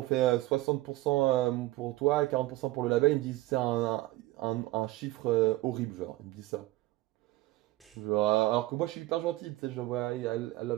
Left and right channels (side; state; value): left; quieter; 18.3 dB